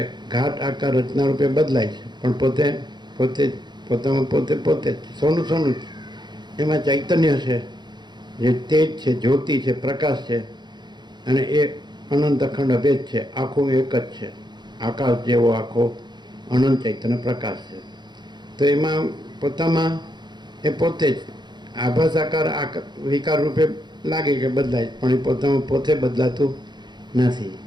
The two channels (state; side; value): late; left; 0.21 ms